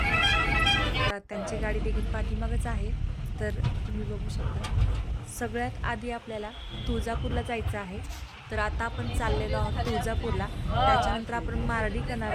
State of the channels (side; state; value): both; identical; correlation 1.00